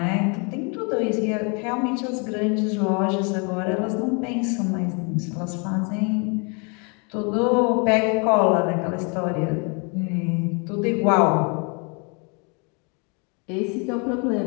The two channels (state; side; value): quieter; right; 34.0 dB